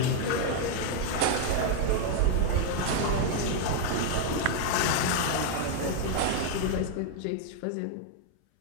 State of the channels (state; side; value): different; both; correlation 0.00